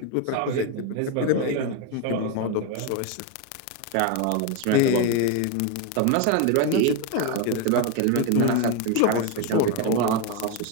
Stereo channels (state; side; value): different; both; correlation 0.02